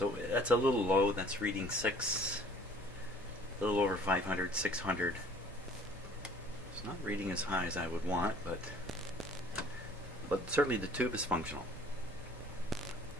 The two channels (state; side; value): normal; both; correlation 0.53